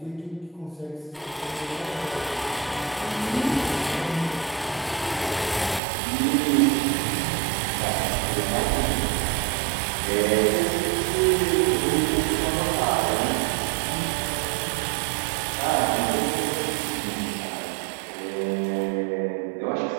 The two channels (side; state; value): left; drops out; at 5.8 s